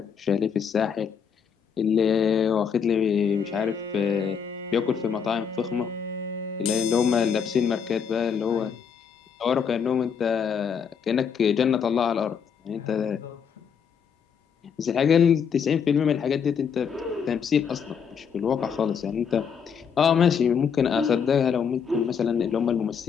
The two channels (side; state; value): right; quieter; 6.9 dB